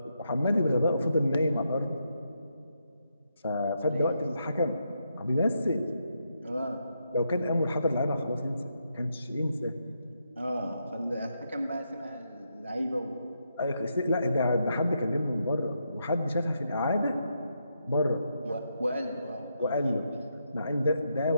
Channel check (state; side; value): inverted; both; correlation -0.81